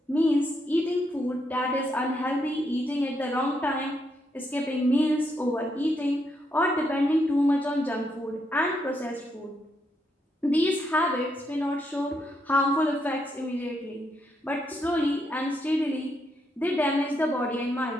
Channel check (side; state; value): both; normal; correlation 0.78